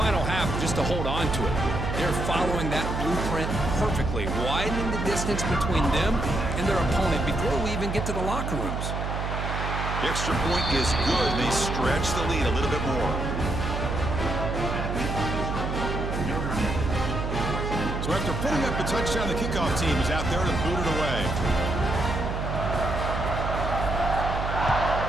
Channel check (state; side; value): noise; right; hum, 3 dB below the sound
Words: half just to hold on to it. They're following that blueprint perfectly, widening the distance between them and their opponent before we even get to the locker rooms. The extra point is good. They stretch the lead a little bit more. So after putting up a touchdown, the kickoff team is out there to boot it away.